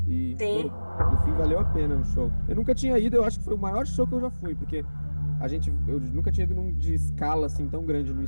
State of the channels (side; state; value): both; inverted; correlation -1.00